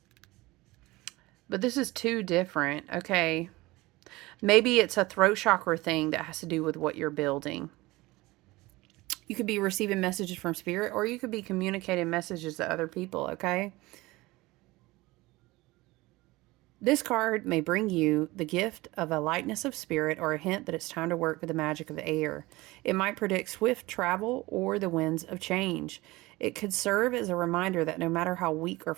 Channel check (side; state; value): left; quieter; 20.7 dB